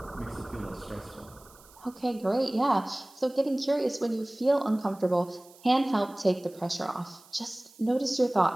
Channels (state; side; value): noise; right; hiss, 25 dB below the sound